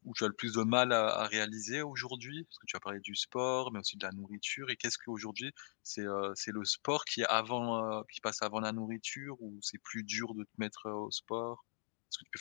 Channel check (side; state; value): right; silent; digital silence